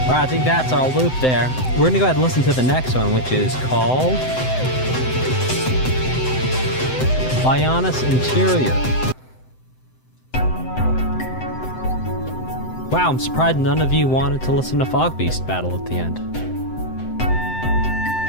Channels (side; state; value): right; late; 7.8 ms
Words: Alright, I think that's our loop there. We're gonna go ahead and listen to the next one, which is called Bionis Interior. Wow, I'm surprised none of you wanted to listen to Fog Beast Battle at the end.